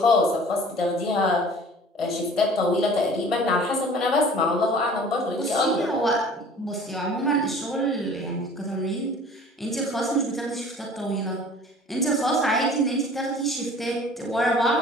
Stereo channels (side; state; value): both; normal; correlation 0.47